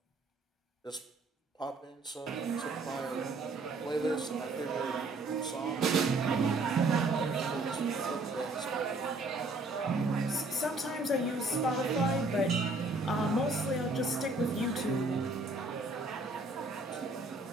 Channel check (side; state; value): left; quieter; 3.1 dB